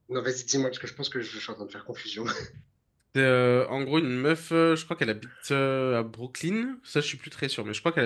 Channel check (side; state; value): both; identical; correlation 1.00